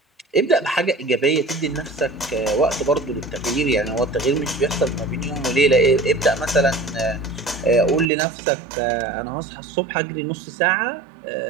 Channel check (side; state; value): left; drops out; at 8.1 s